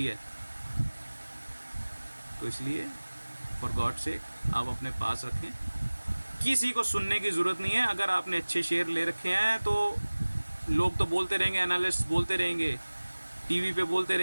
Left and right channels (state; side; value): inverted; both; correlation -1.00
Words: है। तो इसलिए फॉर गॉड सेक आप अपने पास रखें, किसी को सुनने की ज़रूरत नहीं है। अगर आपने अच्छे शेयर ले रखे हैं तो लोग तो बोलते रहेंगे, एनालिस्ट बोलते रहेंगे, टीवी पे बोलते